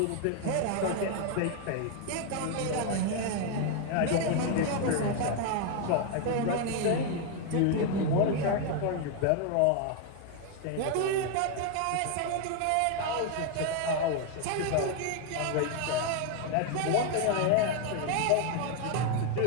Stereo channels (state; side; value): different; both; correlation 0.01